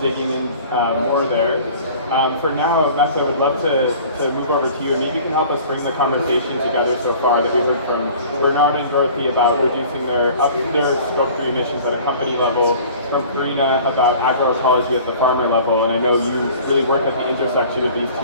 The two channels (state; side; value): inverted; both; correlation -0.46